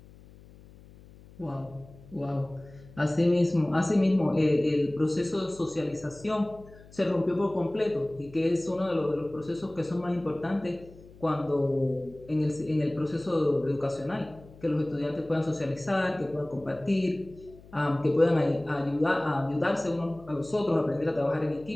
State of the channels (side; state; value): left; noise; hum, 22 dB below the sound